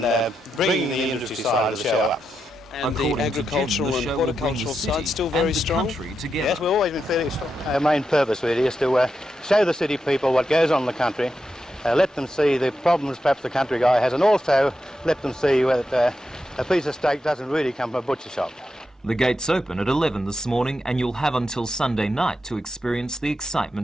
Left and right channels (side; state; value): both; normal; correlation 0.86